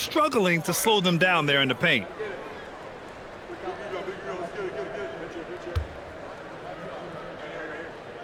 to slow them down there in the paint.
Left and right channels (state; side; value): identical; both; correlation 1.00